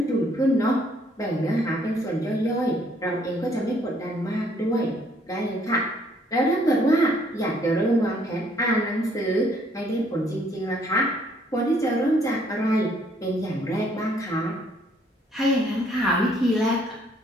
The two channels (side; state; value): both; normal; correlation 0.65